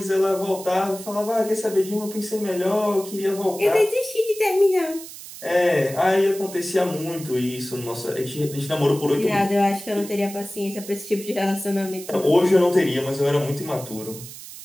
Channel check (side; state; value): right; noise; hiss, 14 dB below the sound